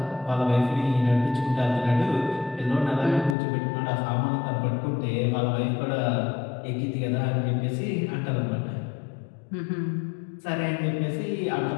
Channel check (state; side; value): drops out; right; at 3.4 s